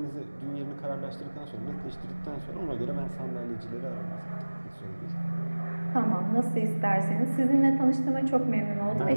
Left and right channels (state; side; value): inverted; both; correlation -1.00